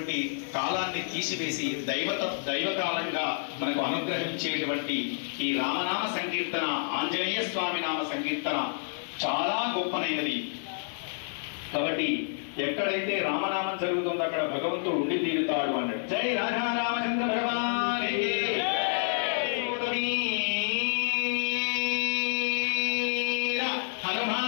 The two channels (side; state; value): right; silent; 59 dB below the other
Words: కాలాన్ని తీసివేసి దైవకాలంగా మనకు అనుగ్రహించేటువంటి ఈ రామనామ సంకీర్తన, ఆంజనేయ స్వామి నామ సంకీర్తన చాలా గొప్పనైనది. కాబట్టి ఎక్కడైతే రామనామం జరుగుతుందో అక్కడ భగవంతుడు ఉండి తీరుతాడు అన్నాడు. జై రాధా రామచంద్ర భగవానికి